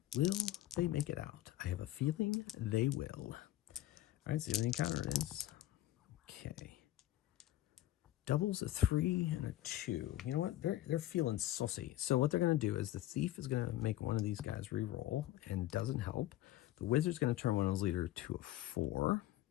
Will they make it out? I have a feeling they will. All right, see what the encounter is. Okay. Doubles a 3 and a 2. You know what? They're feeling saucy. So what they're going to do is the thief is going to make one of these guys re-roll, and doesn't help. The wizard's going to turn one of those leaders to a 4.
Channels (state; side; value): quieter; right; 14.4 dB